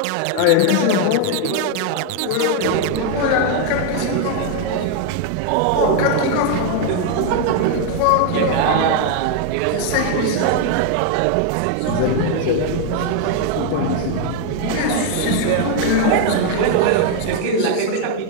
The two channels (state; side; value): different; both; correlation 0.01